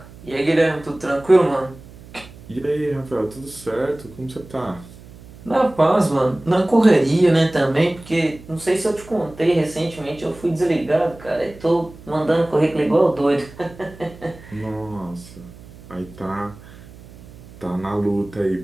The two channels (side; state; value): right; noise; hum, 20 dB below the sound